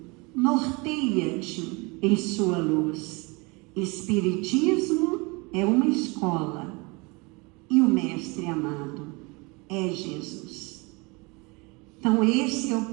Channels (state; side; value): quieter; left; 27.4 dB